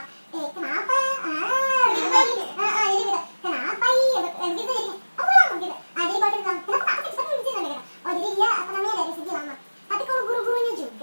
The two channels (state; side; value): inverted; both; correlation -1.00